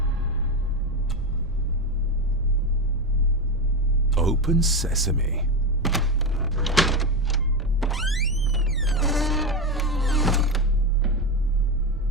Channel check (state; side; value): noise; right; rumble, 11 dB below the sound